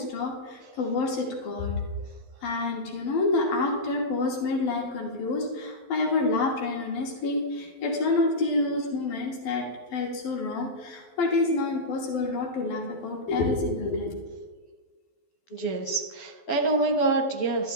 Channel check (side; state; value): right; late; 12 ms